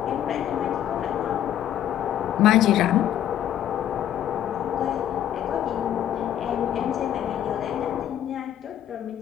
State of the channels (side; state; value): right; quieter; 11.0 dB